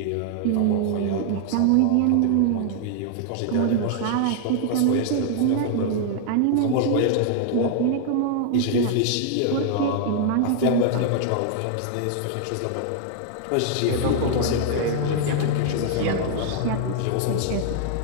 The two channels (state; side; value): different; both; correlation 0.00